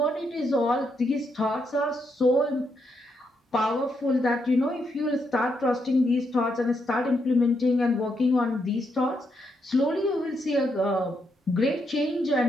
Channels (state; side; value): normal; both; correlation 0.79